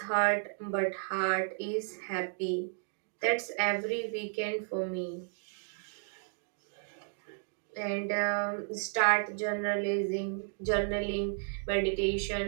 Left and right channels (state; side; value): silent; left; 56 dB below the other